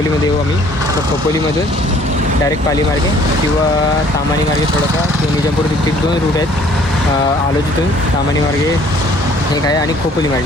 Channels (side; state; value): both; normal; correlation 0.58